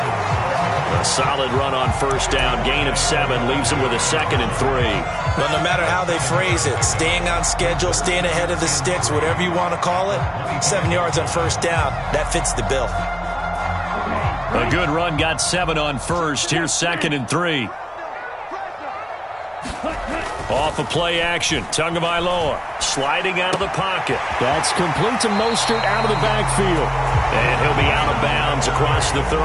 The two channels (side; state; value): both; identical; correlation 1.00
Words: A solid run on first down. Gain of 7 leaves him with a 2nd and 3. Well, no matter how they phrase it, staying on schedule, staying ahead of the sticks, whatever you want to call it, 7 yards on first down, that fits the bill. A good run got 7 on first. Here's 2nd and 3. Off of play action. Tagovailoa sliding out of the pocket. That's complete to Mostert out of the backfield. And he'll be out of bounds across the